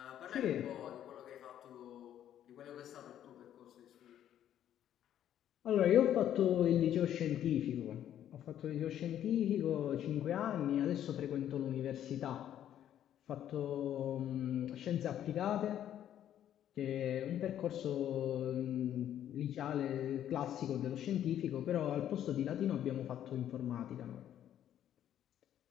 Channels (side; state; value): right; quieter; 10.9 dB